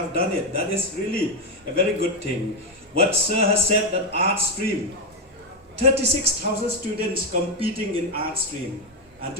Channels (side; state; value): both; normal; correlation 0.06